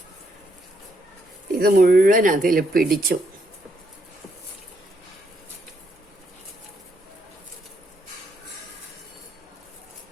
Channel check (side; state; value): both; normal; correlation 0.75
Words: ഇത് മുഴുവൻ അതിൽ പിടിച്ചു.